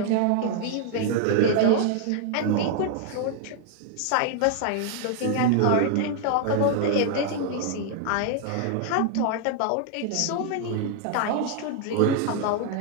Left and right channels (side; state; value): both; different; correlation 0.00